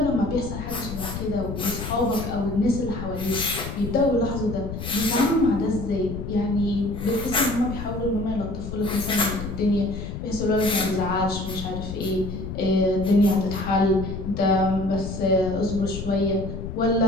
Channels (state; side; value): noise; left; rumble, 7 dB below the sound